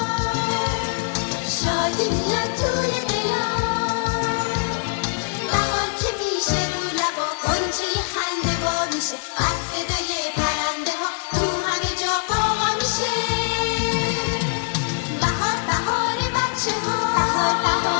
شادی میاد توی دلا. بهار که میشه رو لبا، غنچه خنده وا میشه، از صدای پرنده ها تو همه جا قاقا میشه. بهار بهار بچه ها، بهار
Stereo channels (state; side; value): silent; right; digital silence